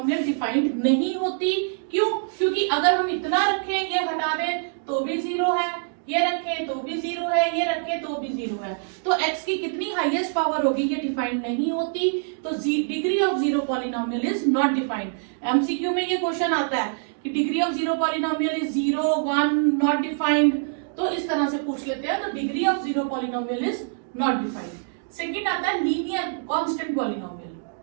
defined नहीं होती। क्यों? क्योंकि अगर हम इतना रखें, ये हटा दें तो भी 0 है, ये रखें तो भी 0 है, ये रखें तो भी 0 है, तो x की कितनी हाईएस्ट पावर होगी ये डिफाइंड नहीं होती। तो degree of zero polynomial is not defined. MCQ में ये क्वेश्चन आता है कि degree of zero polynomial is 0, 1, not defined, तो इस तरह से पूछ लेते हैं। तो degree of zero polynomial is not defined. Second आता है linear constant polynomial.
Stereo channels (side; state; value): left; silent; digital silence